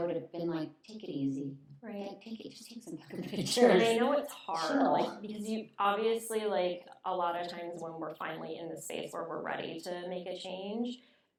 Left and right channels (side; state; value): both; identical; correlation 1.00